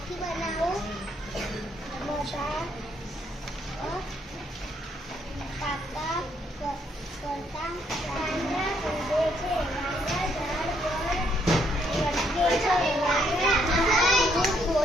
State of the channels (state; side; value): normal; both; correlation 0.71